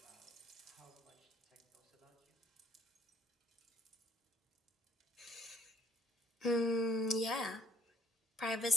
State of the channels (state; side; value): normal; both; correlation 0.61